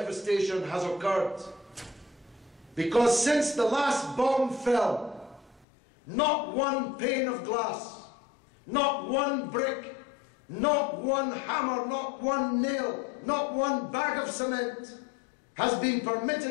has occurred. Because since the last bomb fell, not one pane of glass, not one brick, not one hammer, not one nail, not one bag of cement has been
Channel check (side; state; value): right; drops out; at 5.7 s